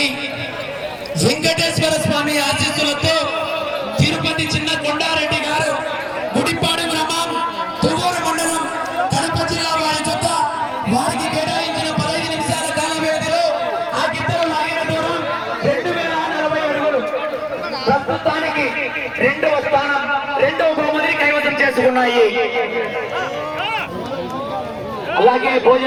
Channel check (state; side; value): identical; both; correlation 1.00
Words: వెంకటేశ్వర స్వామి ఆశీస్సులతో తిరుపతి చిన్న కొండారెడ్డి గారు గుడిపాడు గ్రామం తువ్వూరు మండలం కడప జిల్లా వారి జత వారికి కేటాయించిన 15 నిమిషాల కాల వ్యవధిలో ఆ గిద్దలు లాగిన దూరం 2040 అడుగులు. ప్రస్తుతానికి రెండవ స్థానం రెండవ బహుమతిని కైవసం చేసుకున్నాయి. అలాగే